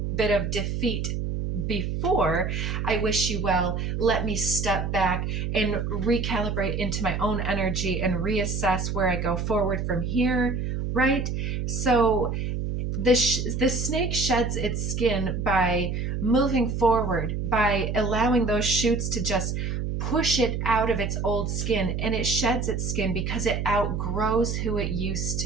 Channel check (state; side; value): noise; right; hum, 2 dB below the sound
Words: bit of defeat before. I wish you well. Let me step back and recalibrate into my own energy and reassess where I go forward from here, right? So the snake sheds its skin by moving forward, by allowing those shoots to just push it out of its old skin, and it sheds its skin because it outgrows who it used